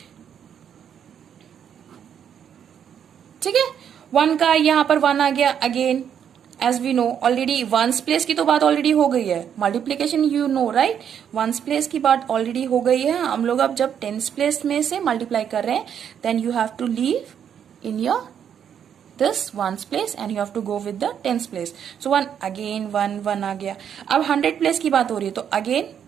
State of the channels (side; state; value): left; quieter; 8.6 dB